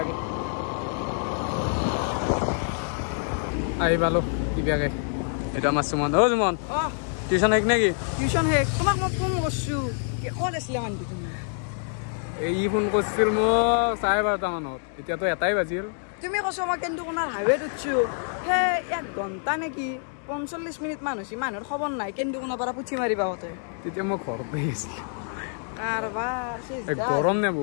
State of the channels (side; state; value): right; silent; 61 dB below the other